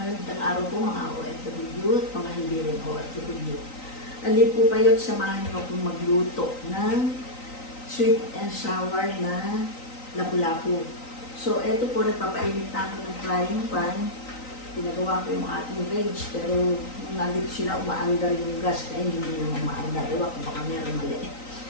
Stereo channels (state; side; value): late; right; 3.9 ms